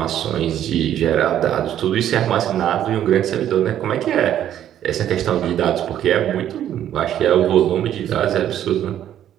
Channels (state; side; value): quieter; left; 11.0 dB